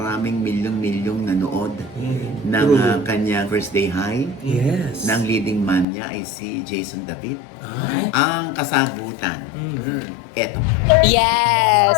milyong-milyong nanood ng kanyang First Day High? Yes. Na ang leading man niya ay si Jason David. Ay. Ang kasagutan, eto. Yes,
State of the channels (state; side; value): drops out; right; at 5.9 s